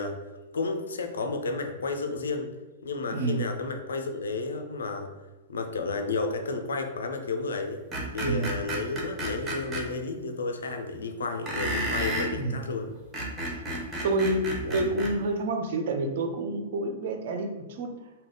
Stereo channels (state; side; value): inverted; both; correlation -0.37